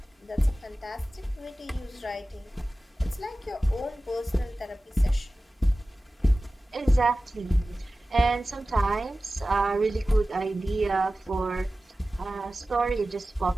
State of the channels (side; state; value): both; normal; correlation 0.96